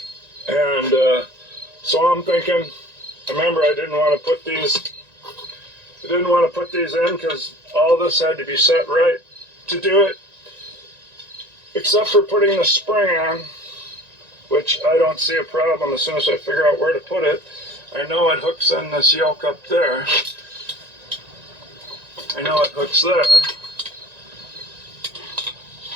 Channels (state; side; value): late; left; 1.9 ms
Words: And so I'm thinking, remember I didn't want to put these in because all this had to be set right to do it, except for putting the spring on, which I don't see a problem as soon as I figure out where to put it. I know it hooks in this yoke up there. I know it hooks there.